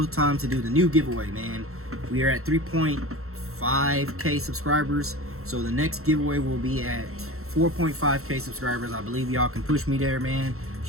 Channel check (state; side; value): late; left; 0.63 ms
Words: time to do the new giveaway, man. We are at 3.5K subscribers, so the next giveaway will be at 4.5K subscribers. I believe y'all can push me there, man.